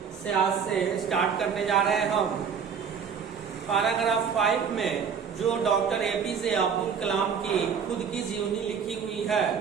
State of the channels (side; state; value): left; quieter; 6.8 dB